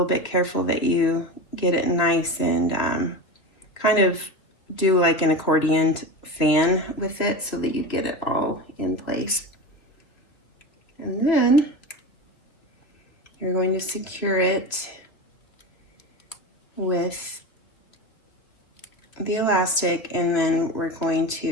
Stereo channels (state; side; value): late; right; 3.0 ms